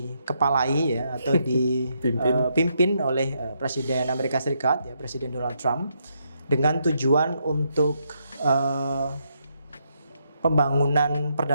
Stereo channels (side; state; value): both; inverted; correlation -0.78